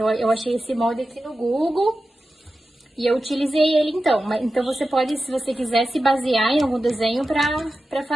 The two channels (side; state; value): both; normal; correlation 0.93